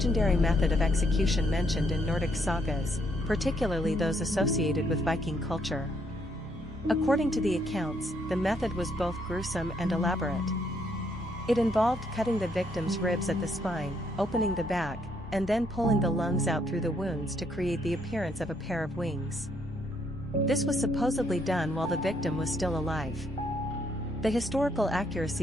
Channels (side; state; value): both; normal; correlation 0.72